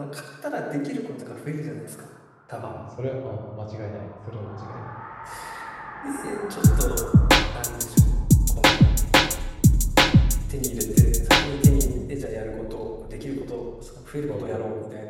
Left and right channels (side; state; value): both; identical; correlation 1.00